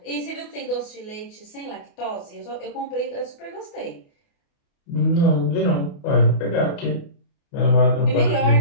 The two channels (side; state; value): right; late; 28 ms